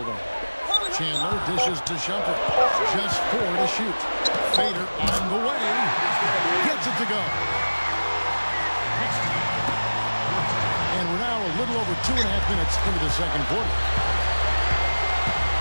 on. Chandler dishes to Shumpert. Just 4 to shoot. Fader on the way. Gets it to go. And we're now a little over 2.5 minutes into the second quarter.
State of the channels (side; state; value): both; inverted; correlation -1.00